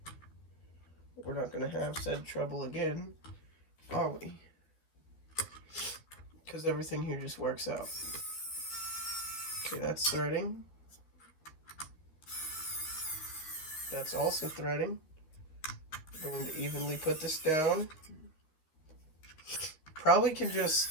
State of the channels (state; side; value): late; right; 13 ms